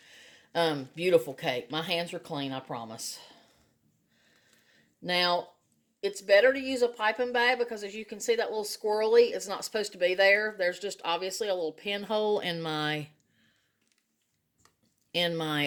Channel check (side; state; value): both; identical; correlation 1.00